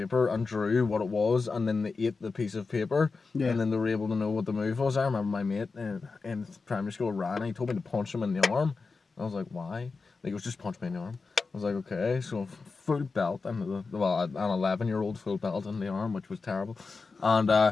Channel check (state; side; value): quieter; right; 4.4 dB